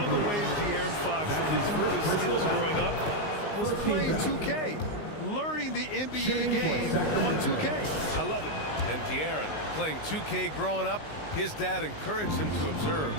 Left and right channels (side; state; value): right; late; 19 ms